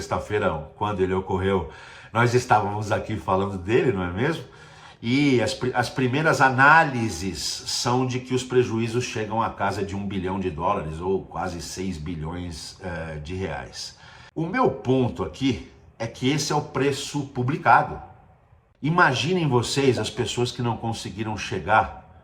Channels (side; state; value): both; identical; correlation 1.00